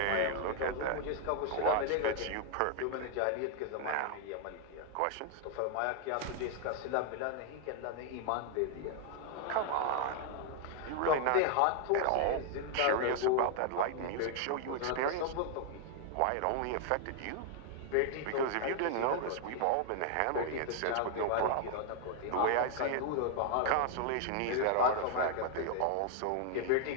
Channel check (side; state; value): both; different; correlation 0.00